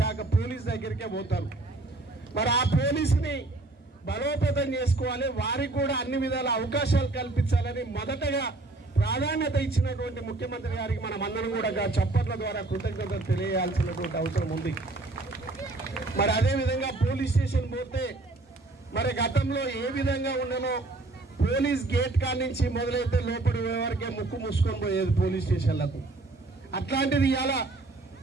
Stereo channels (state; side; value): quieter; left; 3.0 dB